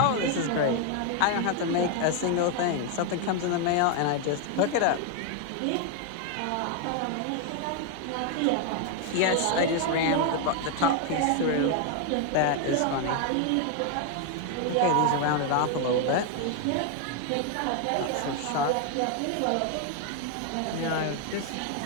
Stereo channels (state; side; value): different; both; correlation 0.01